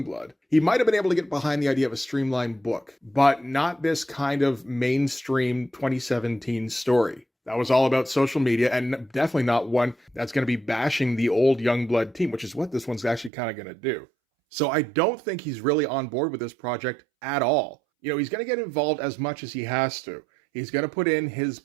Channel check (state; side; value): drops out; left; at 13.3 s